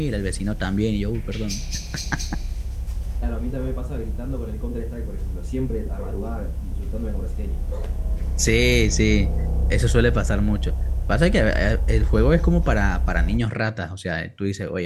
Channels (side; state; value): both; identical; correlation 1.00